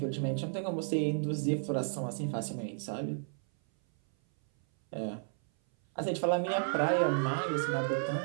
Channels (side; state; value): left; silent; 56 dB below the other